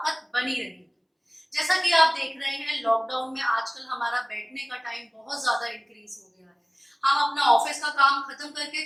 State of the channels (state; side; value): identical; both; correlation 1.00